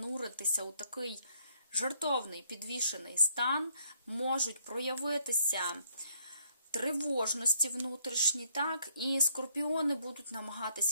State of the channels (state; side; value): inverted; both; correlation -0.68